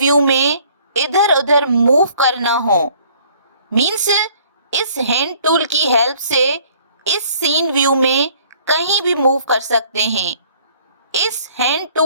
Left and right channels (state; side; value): inverted; both; correlation -0.57